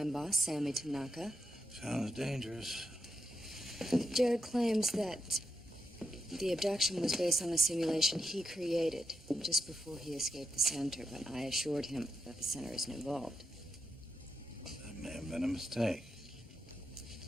boss, Sammy Tanaka. Sounds dangerous. Jared claims that the abduction was based on a simulation he created just before he escaped the center, but I assured him that the center isn't involved. That may have been a mistake.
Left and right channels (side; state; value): both; normal; correlation 0.85